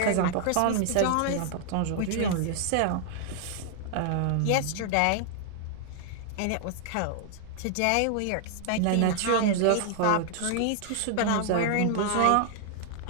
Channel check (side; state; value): both; different; correlation 0.00